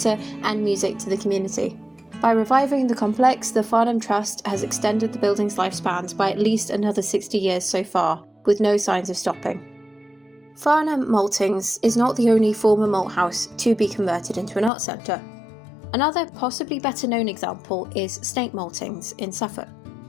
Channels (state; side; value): drops out; right; at 14.7 s